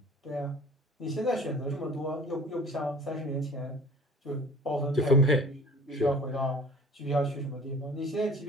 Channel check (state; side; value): normal; both; correlation 0.46